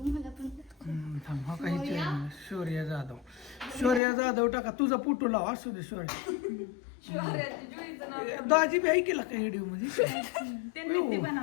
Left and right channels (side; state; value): right; drops out; at 4.0 s